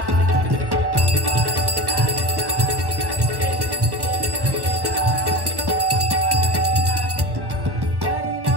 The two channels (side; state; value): left; late; 1.3 ms